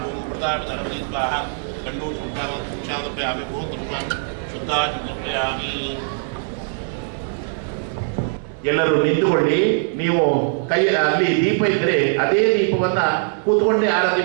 ಓಂ ಪ್ರತಾಪಧರವತಿ ಸ್ವಾಹಾ. ಗಂಡು ಶುದ್ಧಾಮಿ ಭೂತೃ ಶುದ್ಧಾಮಿ. ಎಲ್ಲರೂ ನಿಂತುಕೊಳ್ಳಿ. ನೀವು ಕೈ ಅಲ್ಲಿ ದೀಪ ಇದ್ರೆ ಅದೇ ದೀಪವನ್ನ ಕೂತ್ಕೊಂಡೇ ಆರತಿ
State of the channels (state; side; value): silent; left; 63 dB below the other